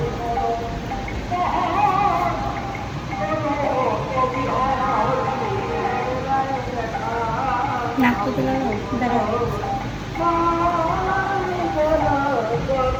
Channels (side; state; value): both; identical; correlation 1.00